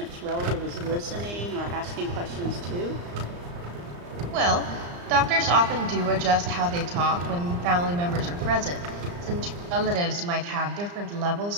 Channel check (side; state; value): left; late; 34 ms